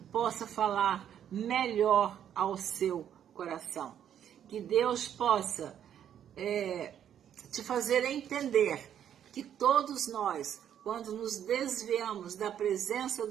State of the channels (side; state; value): left; quieter; 9.6 dB